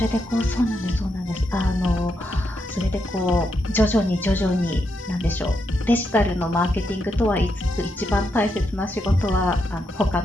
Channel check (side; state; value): both; normal; correlation 0.82